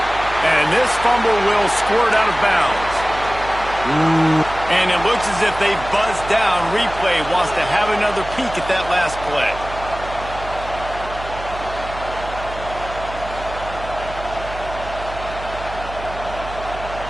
And this fumble will squirt out of bounds. And it looks as if they buzzed down. Replay wants to have another peek at that last play.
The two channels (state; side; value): noise; right; hum, 12 dB below the sound